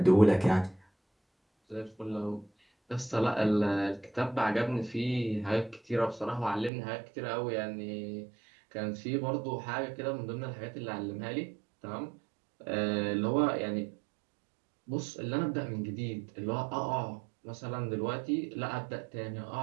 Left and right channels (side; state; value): left; drops out; at 6.7 s